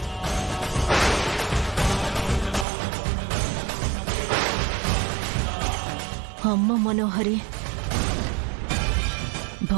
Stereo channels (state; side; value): drops out; left; at 2.7 s